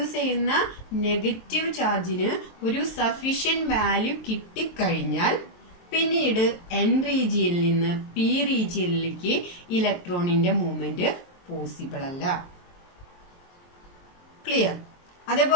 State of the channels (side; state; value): right; late; 23 ms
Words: ചെയ്യുന്ന നെഗറ്റീവ് ചാർജിന് ഒരു സഫീഷ്യന്റ് വാല്യൂ കിട്ടിക്കഴിഞ്ഞാൽ പിന്നീട് N റീജിയനിൽ നിന്ന് P റീജിയനിലേക്ക് ഇലക്ട്രോണിന്റെ മൂവ്മെന്റ് പോസിബിൾ അല്ല. ക്ലിയർ?